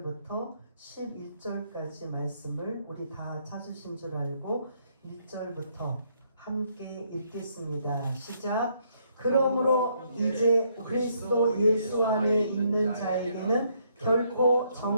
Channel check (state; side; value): inverted; both; correlation -0.71